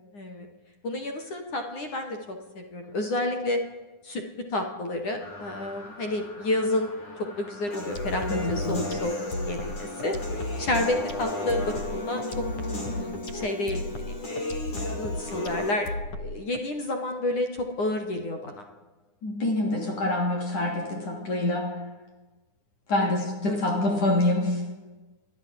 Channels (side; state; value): right; late; 9.8 ms